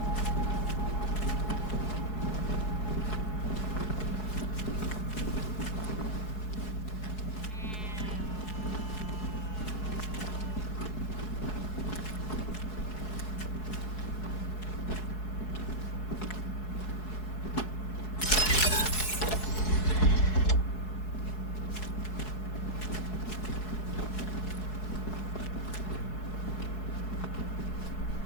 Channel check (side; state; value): right; late; 4.7 ms